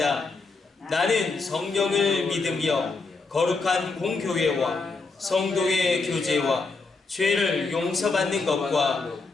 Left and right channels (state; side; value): quieter; right; 4.0 dB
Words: 나는 성령을 믿으며 거룩한 공교회와 성도의 교제와 죄를 용서받는 것과